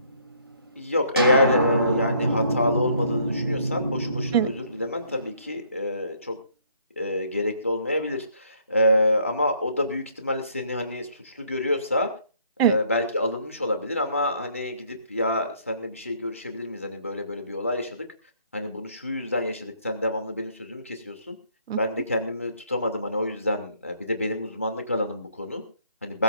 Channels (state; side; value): inverted; both; correlation -0.64